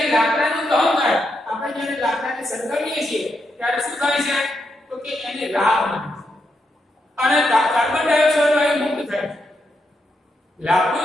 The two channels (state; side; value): normal; both; correlation 0.82